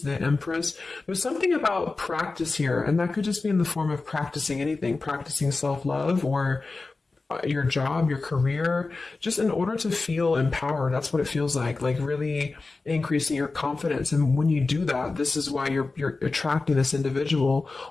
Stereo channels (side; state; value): right; quieter; 3.7 dB